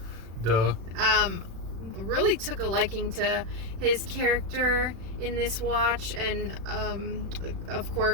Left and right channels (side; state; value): left; late; 36 ms